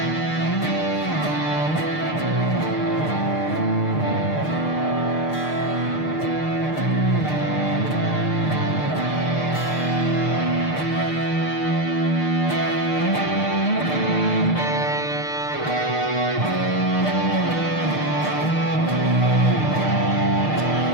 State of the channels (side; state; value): right; late; 6.6 ms